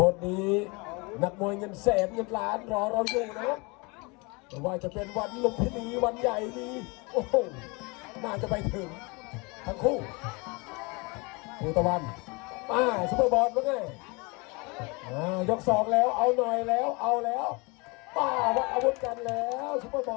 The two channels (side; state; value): right; quieter; 28.2 dB